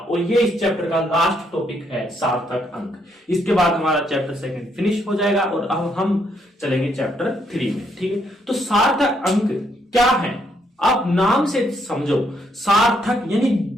ये इस चैप्टर का लास्ट टॉपिक है सार्थक अंक। इसके बाद हमारा चैप्टर सेकंड फिनिश हो जाएगा और अब हम चलेंगे चैप्टर 3 में, ठीक है। तो सार्थक अंक क्या है, आप नाम से समझो। सार्थक यानी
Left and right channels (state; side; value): normal; both; correlation 0.73